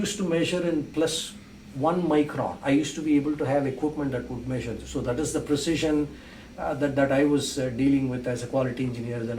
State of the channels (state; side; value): identical; both; correlation 1.00